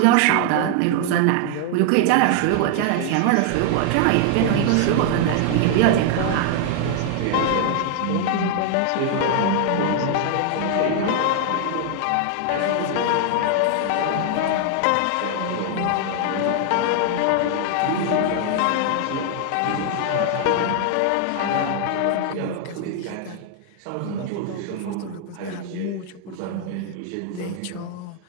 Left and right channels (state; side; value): different; both; correlation 0.00